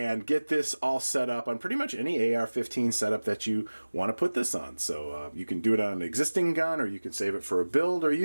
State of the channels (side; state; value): both; inverted; correlation -1.00